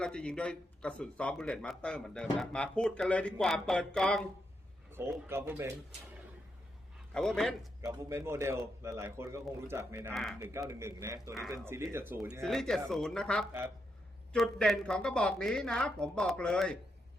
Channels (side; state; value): both; normal; correlation 0.82